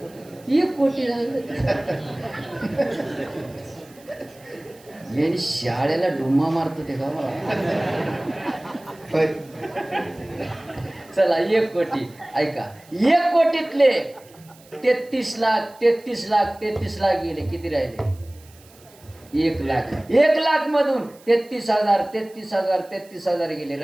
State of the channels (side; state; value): right; noise; hiss, 26 dB below the sound